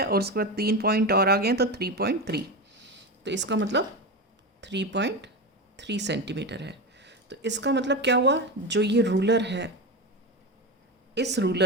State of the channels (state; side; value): normal; both; correlation 0.19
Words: और उसके बाद 3 पॉइंट और आ गए हैं तो 3.3, तो इसका मतलब 3.3 सेंटीमीटर है. तो इसका मतलब क्या हुआ, जो ये रूलर है इस